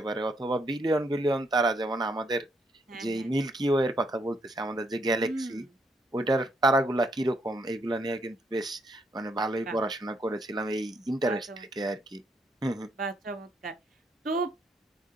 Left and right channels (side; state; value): both; normal; correlation 0.74